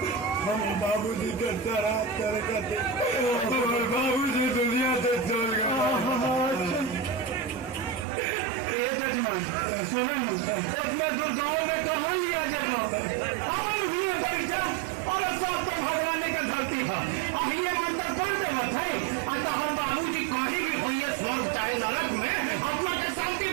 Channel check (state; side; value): drops out; left; at 8.1 s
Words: हम बाबूजी के तरह करते बाबूजी दुनिया से चल गए। ये जजमान सुनो उसमें दुर्गाओं में कहाँ लिया जगह परीक्षा और सब तो भगवान के धरती है ये मतलब कौन से मत है अतः बाबूजी कहीं भी हुई स्वर्ग चाहे नरक में आत्मा के शांति